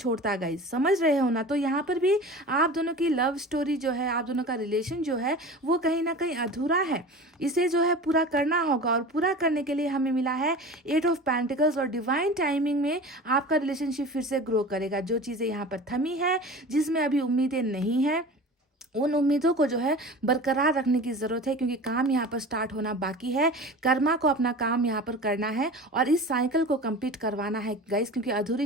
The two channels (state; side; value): normal; both; correlation 0.36